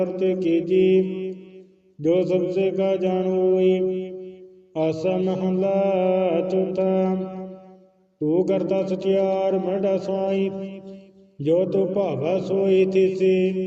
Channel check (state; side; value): identical; both; correlation 1.00